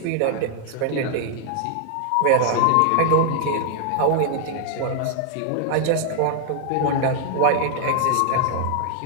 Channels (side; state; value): both; different; correlation 0.00